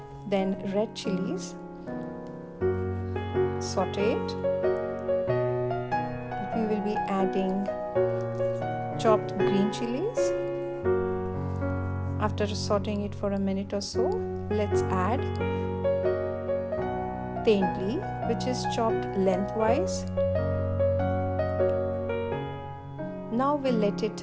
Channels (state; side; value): identical; both; correlation 1.00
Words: Then red chilies. Saute it. We will be adding chopped green chilies. After sauteing it for a minute or so, let's add thali, which is chopped lengthwise. Now we'll let it